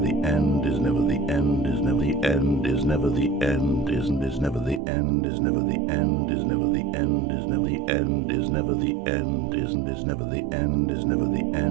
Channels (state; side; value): drops out; left; at 4.8 s